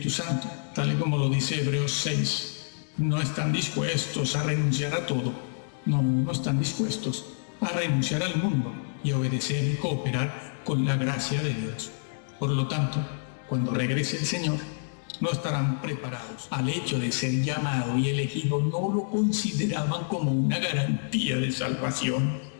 Santo, tal y como lo dice Hebreos 6, no están dispuestos a renunciar a todo. No están dispuestos a renunciar al mundo y a obedecer y cooperar con la gracia de Dios. Por lo tanto, cuando regrese el Señor, no estarán preparados al hecho de ser llamado y elegido. No lo consideraban como una garantía de salvación,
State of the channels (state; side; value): silent; right; digital silence